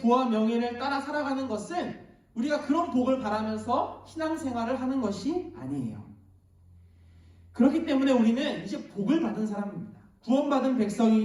명예를 따라 살아가는 것은 우리가 그런 복을 바라면서 신앙생활을 하는 것이 아니에요. 그렇기 때문에 우리는 이제 복을 받은 사람입니다. 구원받은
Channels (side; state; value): both; identical; correlation 1.00